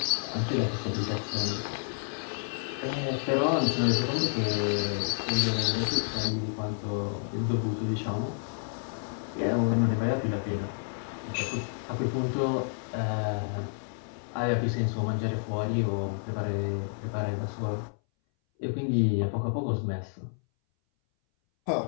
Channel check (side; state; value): right; silent; 58 dB below the other